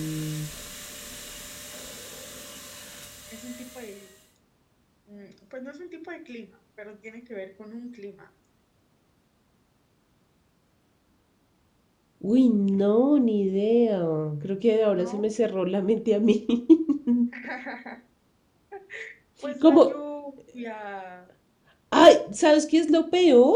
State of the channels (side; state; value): both; identical; correlation 1.00